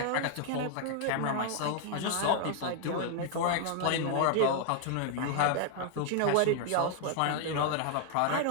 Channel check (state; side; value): different; both; correlation 0.00